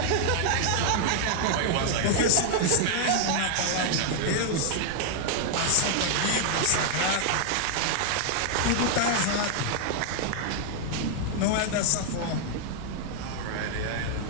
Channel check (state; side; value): different; both; correlation 0.00